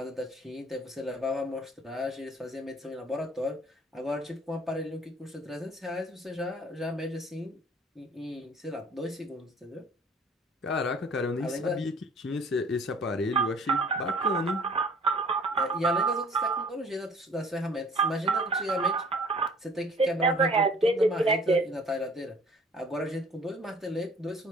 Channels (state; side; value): normal; both; correlation 0.53